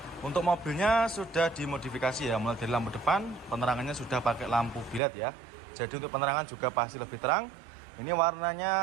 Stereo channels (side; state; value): left; drops out; at 5.0 s